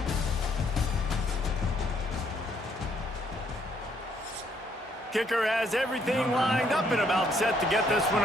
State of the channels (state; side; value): normal; both; correlation 0.69